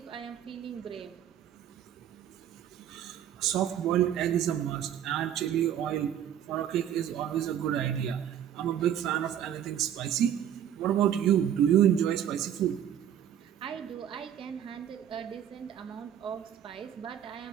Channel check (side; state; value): left; quieter; 10.1 dB